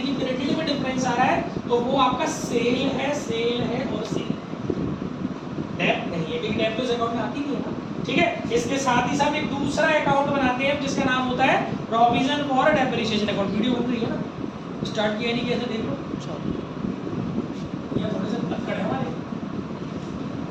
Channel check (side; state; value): both; identical; correlation 1.00